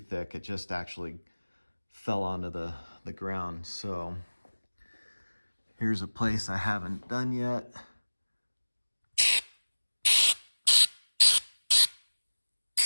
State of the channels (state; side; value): inverted; both; correlation -1.00